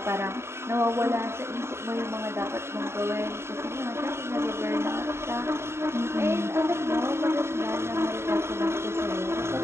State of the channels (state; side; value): late; left; 0.12 ms